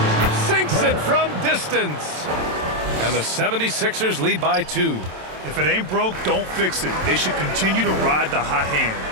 Sinks it from distance. And the 76ers lead by 2. If it ain't broke, don't fix it. They should continue to ride the hot hand.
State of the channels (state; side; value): late; left; 27 ms